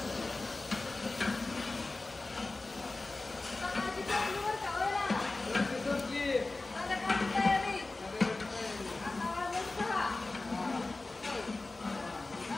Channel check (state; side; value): quieter; right; 3.2 dB